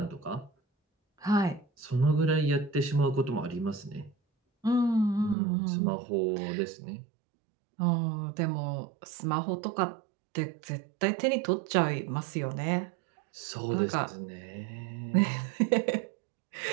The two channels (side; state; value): left; drops out; at 5.4 s